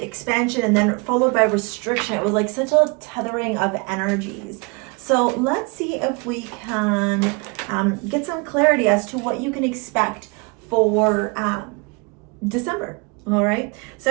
and then followed by restriction. It was like such a tethering of energies. So let's see if we can get some clarity as to what you can expect for December. All right,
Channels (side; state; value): left; quieter; 30.9 dB